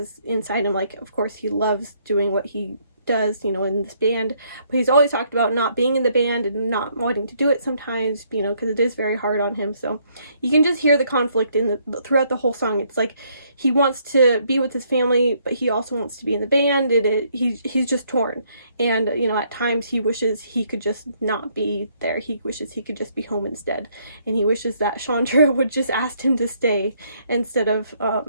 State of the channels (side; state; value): both; inverted; correlation -0.69